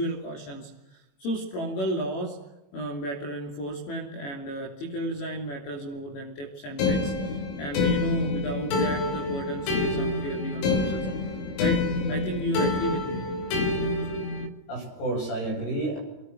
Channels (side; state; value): right; late; 22 ms